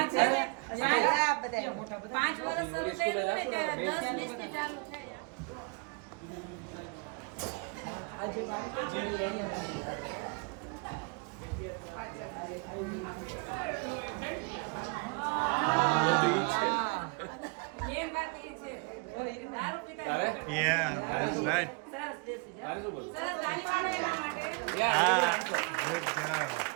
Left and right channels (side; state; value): left; quieter; 32.4 dB